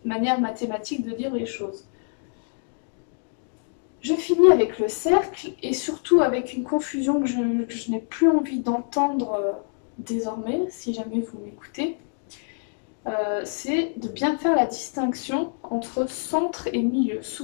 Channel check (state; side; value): silent; right; 61 dB below the other